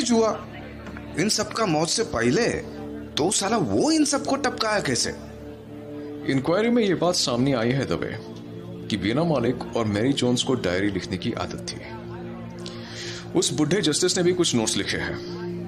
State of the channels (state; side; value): identical; both; correlation 1.00